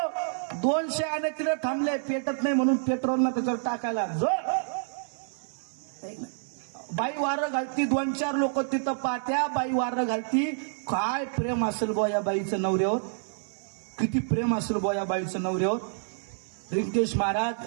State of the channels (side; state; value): left; silent; 59 dB below the other